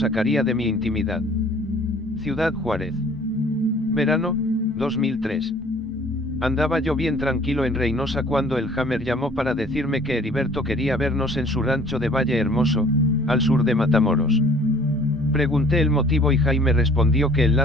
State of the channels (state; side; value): normal; both; correlation 0.53